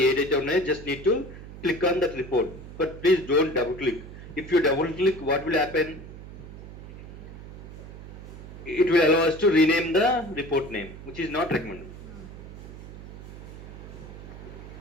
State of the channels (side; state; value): right; noise; hum, 13 dB below the sound